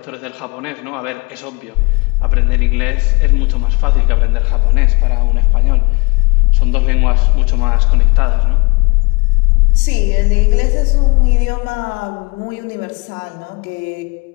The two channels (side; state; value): right; quieter; 28.2 dB